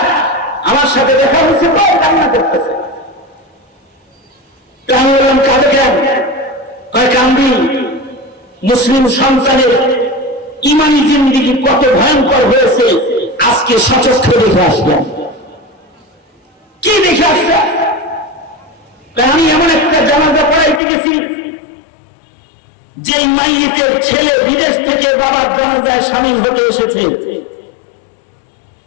আমার সাথে দেখা হয়েছে, কান্না করতেছে। আমি বললাম কাঁদে কেন? কান্দি, মুসলিম সন্তানের ইমানি জিন্দিগি কত ভয়ঙ্কর হয়েছে আজকে সচক্ষে দেখে আসলাম। কি দেখে আসলাম? আমি এমন একটা জানাজা পড়াইতে গেছি যে মাইয়েতের ছেলে বিদেশ থেকে বাবার জানাজায় শামিল হতে এসেছে।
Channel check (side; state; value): right; drops out; at 20.8 s